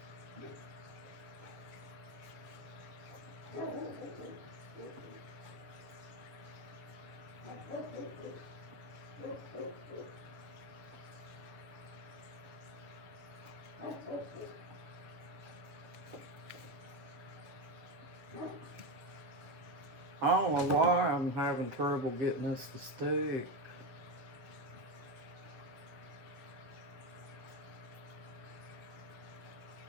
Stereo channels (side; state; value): left; late; 7.4 ms